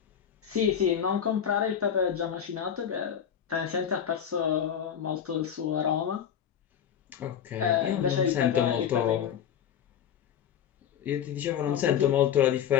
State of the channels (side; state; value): right; quieter; 8.8 dB